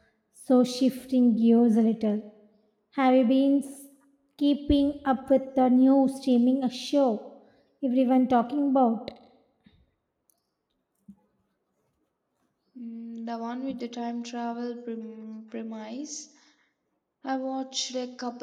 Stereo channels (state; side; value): identical; both; correlation 1.00